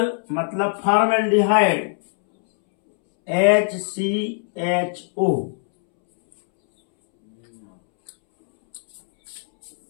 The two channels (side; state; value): right; silent; 65 dB below the other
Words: मतलब फॉर्मेल्डिहाइड HCHO।